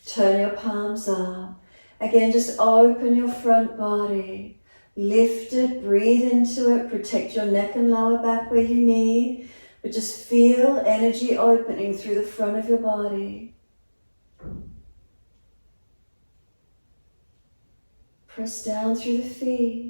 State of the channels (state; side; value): inverted; both; correlation -1.00